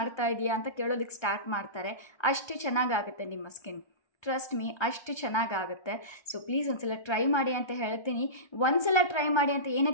ಇದೆಯಾ ಅಂತ ಕೇಳೋದಕ್ಕೆ ಸ್ಟಾರ್ಟ್ ಮಾಡ್ತಾರೆ. ಅಷ್ಟು ಚೆನ್ನಾಗಾಗುತ್ತೆ ನಿಮ್ಮ ಸ್ಕಿನ್, ಟ್ರಸ್ಟ್ ಮೀ, ಅಷ್ಟು ಚೆನ್ನಾಗಾಗುತ್ತೆ. ಸೊ ಪ್ಲೀಸ್ ಒಂದ್ಸಲ ಟ್ರೈ ಮಾಡಿ ಅಂತ ಹೇಳ್ತೀನಿ. ಒಂದ್ಸಲ ಟ್ರೈ ಮಾಡಿ ಅಂತ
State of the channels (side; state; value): right; late; 1.3 ms